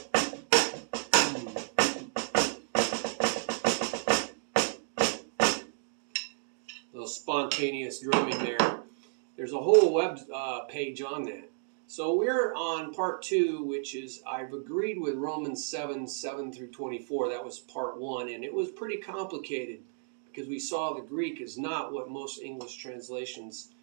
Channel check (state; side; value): silent; left; digital silence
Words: Little spontaneous drumming there. There's a whole web page on that. So we're on part 2, which is I've agreed with Romans 7 through 24. That was part 1, and it was pretty complicated because we saw the Greek is not what most English translations